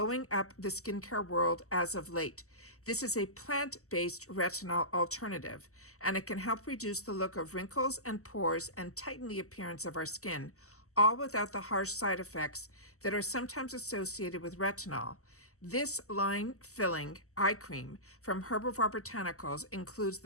up the skincare world as of late. This is a plant-based retinol alternative, and it can help reduce the look of wrinkles and pores and tighten the appearance of our skin, all without the harsh side effects that are sometimes associated with retinol. This line-filling eye cream from Herbarium Botanicals includes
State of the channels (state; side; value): late; right; 0.64 ms